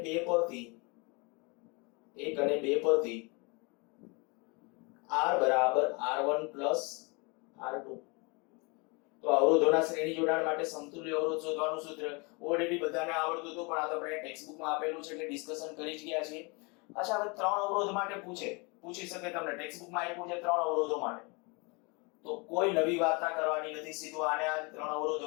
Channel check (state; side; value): quieter; right; 29.8 dB